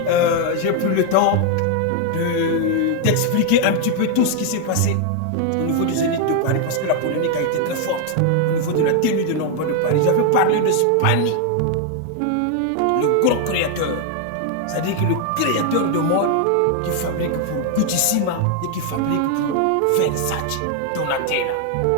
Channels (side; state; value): both; different; correlation 0.00